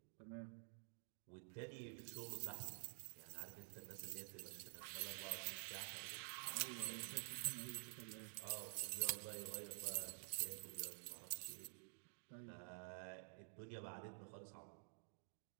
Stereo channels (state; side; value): silent; left; digital silence